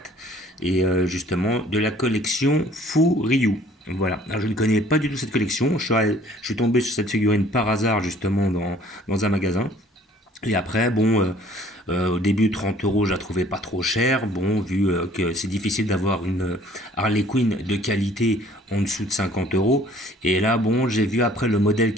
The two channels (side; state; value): both; normal; correlation 0.55